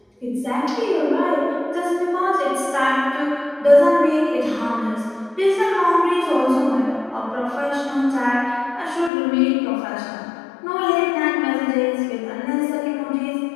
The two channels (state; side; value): drops out; right; at 9.1 s